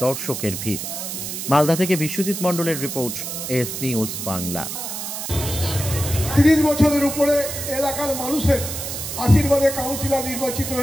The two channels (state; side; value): noise; right; hiss, 6 dB below the sound